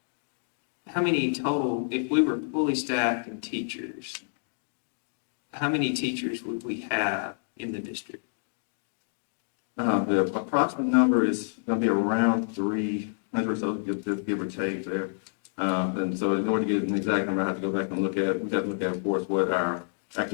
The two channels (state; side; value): silent; right; digital silence